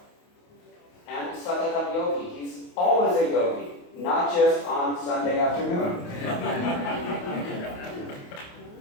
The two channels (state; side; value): late; right; 28 ms